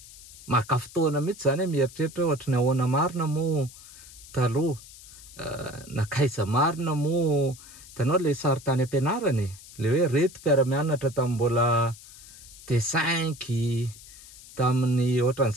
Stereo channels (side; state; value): left; noise; hiss, 19 dB below the sound